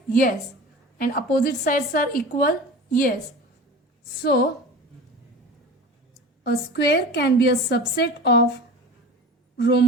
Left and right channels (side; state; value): both; normal; correlation 0.35